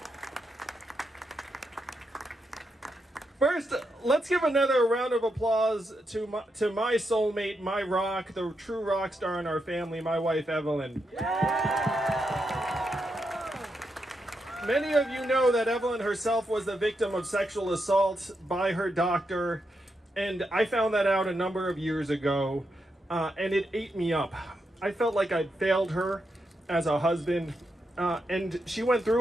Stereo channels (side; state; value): both; normal; correlation 0.83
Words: First, let's give another round of applause to my soulmate, my rock, the true rock star in our family, my wife, Evelyn. Many of you know that Evelyn herself was the victim of sexual assault by her doctor, and I found that out a number of years ago, and it ate me up. I felt like I'd failed her as a husband, and she went